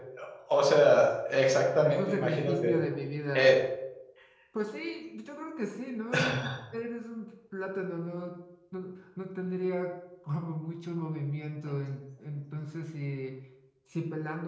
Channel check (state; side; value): identical; both; correlation 1.00